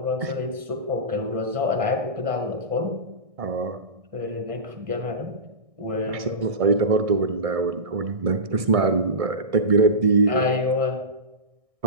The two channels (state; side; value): late; left; 1.6 ms